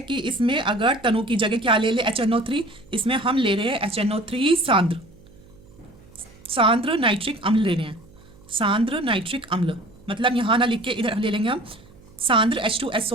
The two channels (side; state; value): right; noise; hum, 24 dB below the sound